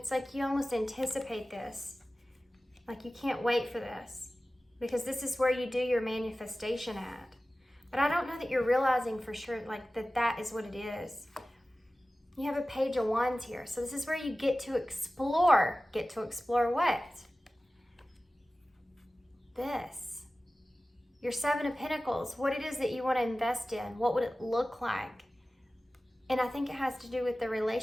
like you almost anticipate this. Like you can't wait for this because this is where you do your manifestation at. But I don't know that you're realizing for sure like that is what it is. You have a Page of Wands here. So this is where you get to explore. Get to explore what? This. Your Seven of Pentacles. What it is that you want to invest in. What would it look like? And I think it has to do with the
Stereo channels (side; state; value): both; normal; correlation 0.96